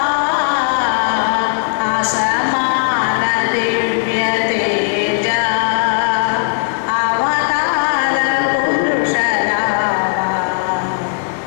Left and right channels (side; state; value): right; silent; digital silence